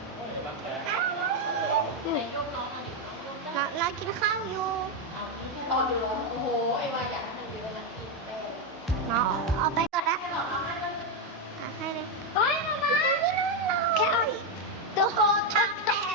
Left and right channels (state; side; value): normal; both; correlation 0.05